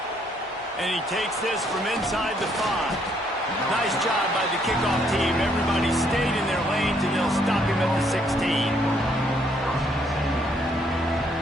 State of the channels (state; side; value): normal; both; correlation 0.69